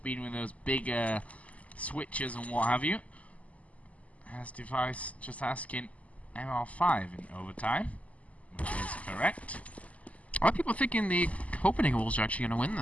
with those big switches and what have you. As device just asking MR5 in overtime, which is correct. A lot of people thinking the Copenhagen Wolves are actually going to win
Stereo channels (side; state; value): right; late; 0.069 ms